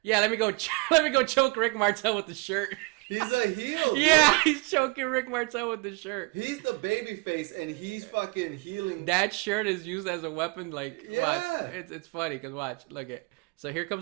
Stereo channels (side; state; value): left; quieter; 27.1 dB